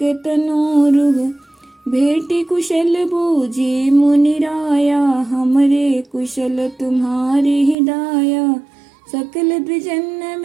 तनोरुह। भेटी कुशल बूझी मुनि राया, हमरे कुशल तुम्हारी हिदाया। सकल द्विजन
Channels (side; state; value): left; drops out; at 7.8 s